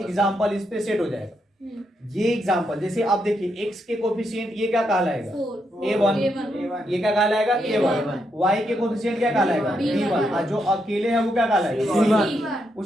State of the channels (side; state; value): both; normal; correlation 0.80